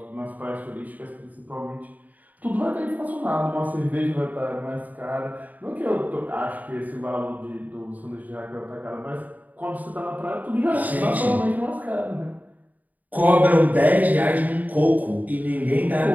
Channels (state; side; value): late; left; 0.078 ms